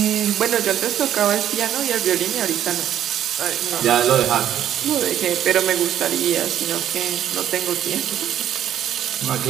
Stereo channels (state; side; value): quieter; left; 10.8 dB